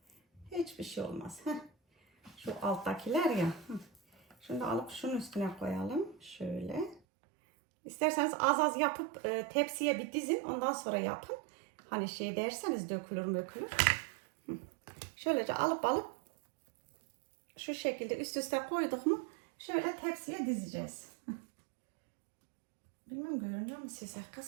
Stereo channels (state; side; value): drops out; left; at 7.0 s